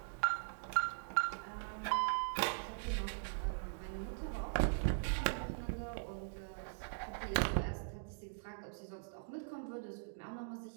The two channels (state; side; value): silent; left; digital silence